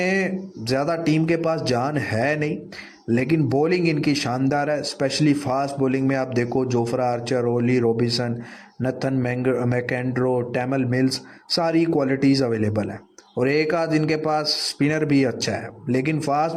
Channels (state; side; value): identical; both; correlation 1.00